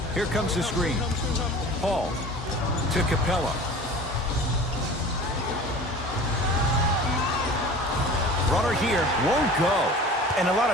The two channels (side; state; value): both; normal; correlation 0.40